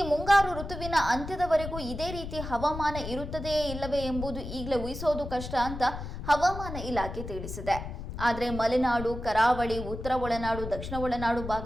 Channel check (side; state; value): left; noise; rumble, 8 dB below the sound